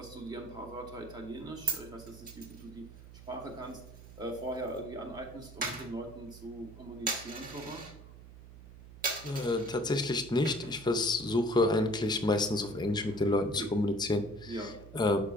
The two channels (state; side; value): noise; right; hum, 17 dB below the sound